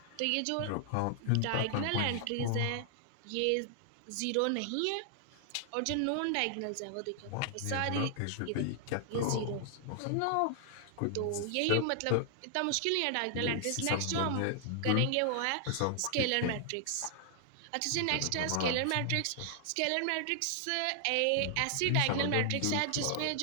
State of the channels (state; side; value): different; both; correlation 0.00